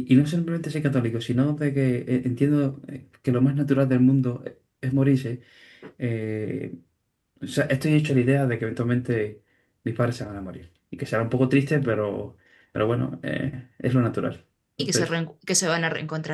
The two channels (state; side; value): identical; both; correlation 1.00